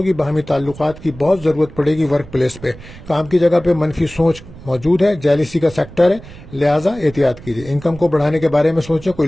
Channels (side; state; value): right; noise; rumble, 18 dB below the sound